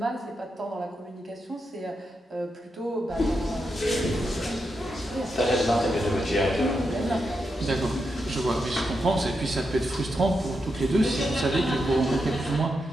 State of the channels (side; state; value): both; normal; correlation 0.85